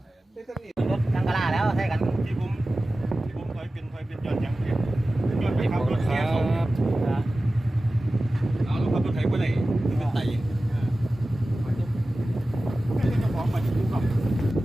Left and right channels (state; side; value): normal; both; correlation 0.96